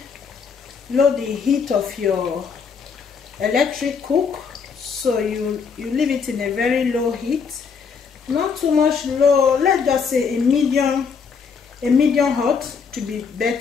lower the heat of your electric cook. So you leave it in a very low heat, not too much low. Let's just say a medium hot to be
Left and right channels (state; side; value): quieter; right; 5.8 dB